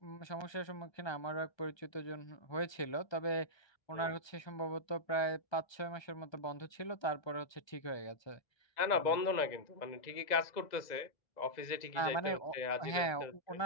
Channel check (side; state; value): right; late; 1.3 ms